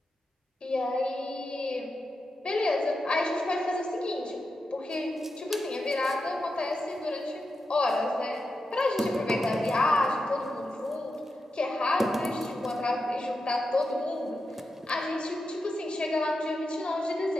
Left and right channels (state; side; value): normal; both; correlation 0.88